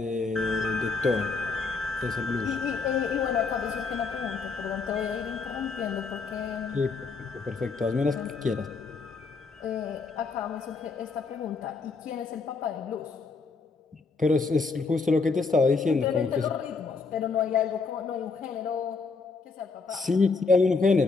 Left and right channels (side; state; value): right; quieter; 4.4 dB